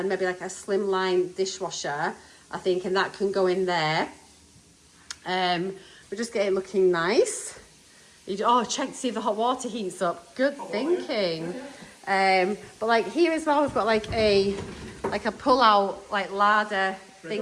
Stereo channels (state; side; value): identical; both; correlation 1.00